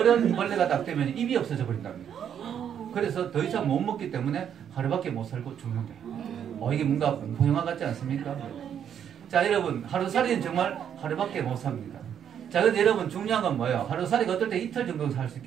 딱 되면 입이 없어져 버린답니다. 그래서 더 이상 못 먹기 때문에 하루밖에 못 살고 죽는데요. 이게 뭔가 공포영화 같지 않습니까? 자, 여러분, 하루살이는 정말 하루밖에 못 삽니다. 자, 근데 여러분, 중요한 건 뭐예요? 하루살이가 어떨 때 이틀 정도 살 수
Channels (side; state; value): left; quieter; 8.9 dB